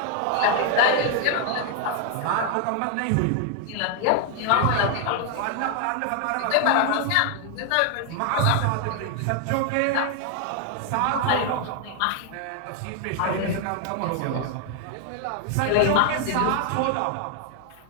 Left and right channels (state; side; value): different; both; correlation 0.00